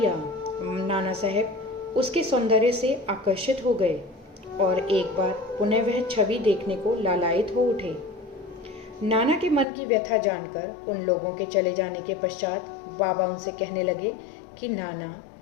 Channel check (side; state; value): right; drops out; at 9.7 s